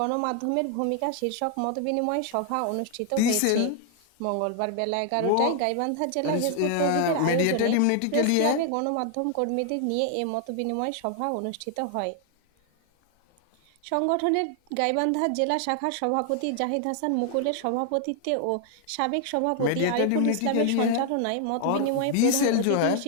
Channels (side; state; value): both; different; correlation 0.00